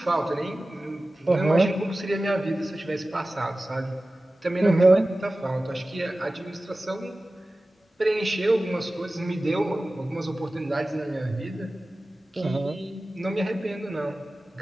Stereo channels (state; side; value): normal; both; correlation 0.96